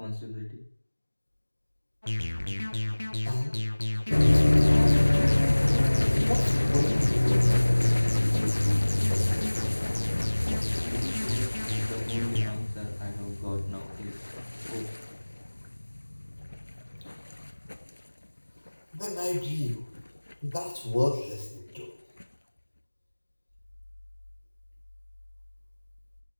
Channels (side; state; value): both; inverted; correlation -1.00